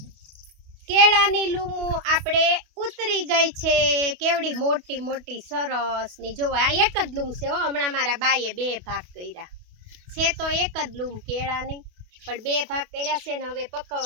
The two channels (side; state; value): left; late; 28 ms